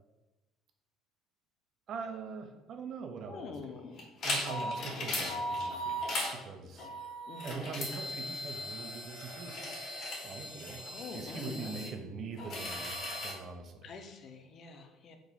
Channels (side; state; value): both; normal; correlation 0.59